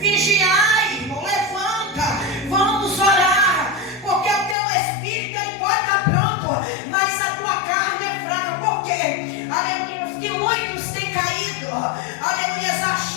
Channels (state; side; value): drops out; right; at 4.5 s